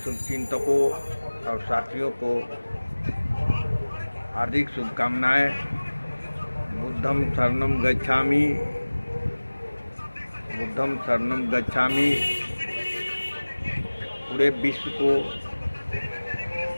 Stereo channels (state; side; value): inverted; both; correlation -1.00